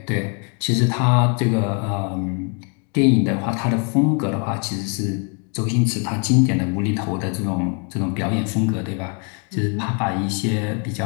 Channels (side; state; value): right; quieter; 36.3 dB